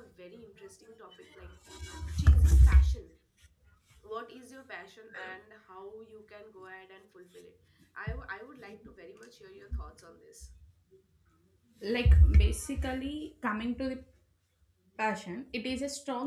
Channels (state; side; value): identical; both; correlation 1.00